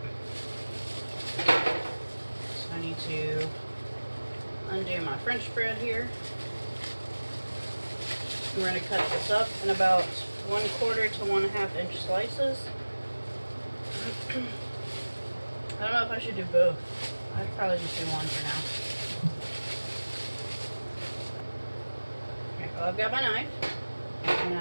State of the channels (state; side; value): inverted; both; correlation -1.00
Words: So I need to undo my French bread here. We're going to cut this up in about 1/4 to 1/2 inch slices. I don't know if I should do both. I'd probably just do one for now. Okay, well, I've got my knife. I'm going